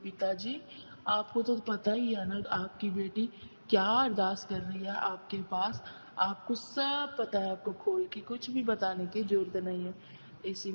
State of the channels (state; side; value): inverted; both; correlation -1.00